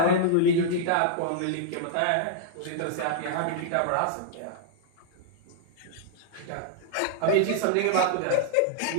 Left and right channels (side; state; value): both; different; correlation -0.01